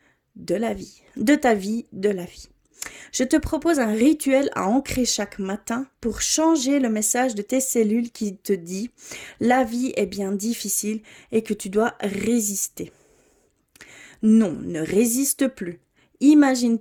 de ta vie, de la vie. Je te propose un rituel à ancrer chaque matin pour changer le message de tes cellules qui te dit « La vie est bien difficile et que tu dois résister ». Non, ne résiste plus.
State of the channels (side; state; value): both; identical; correlation 1.00